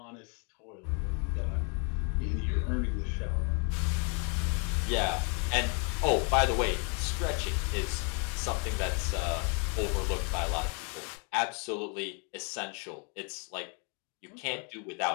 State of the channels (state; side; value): quieter; right; 37.3 dB